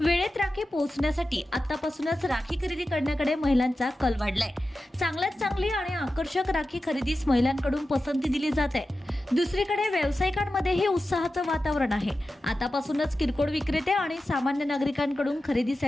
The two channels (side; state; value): both; normal; correlation 0.93